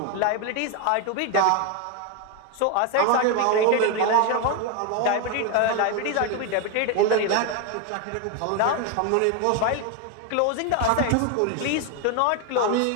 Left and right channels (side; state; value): both; different; correlation 0.01